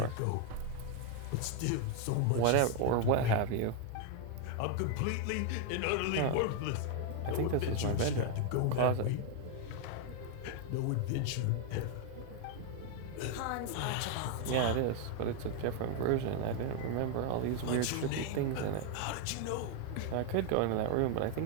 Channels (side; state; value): both; different; correlation 0.01